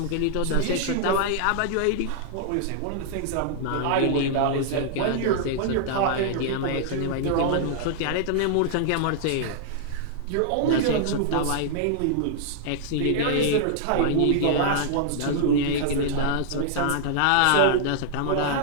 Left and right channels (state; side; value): different; both; correlation -0.01